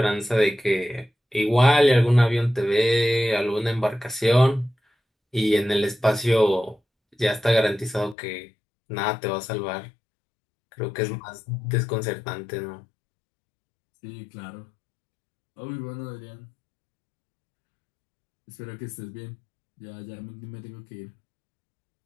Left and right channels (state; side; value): drops out; right; at 8.2 s